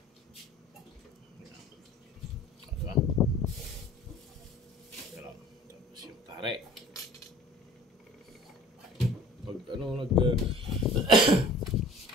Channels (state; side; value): normal; both; correlation 0.47